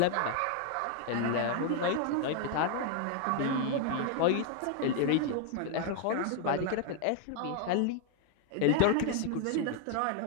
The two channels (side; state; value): both; different; correlation 0.00